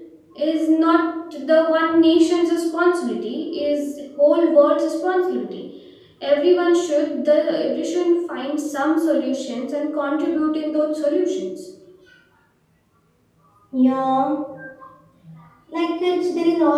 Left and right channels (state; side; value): identical; both; correlation 1.00